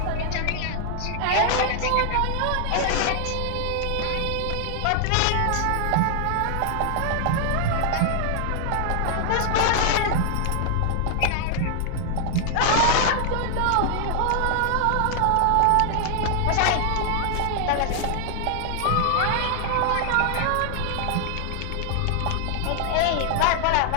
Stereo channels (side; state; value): both; different; correlation 0.00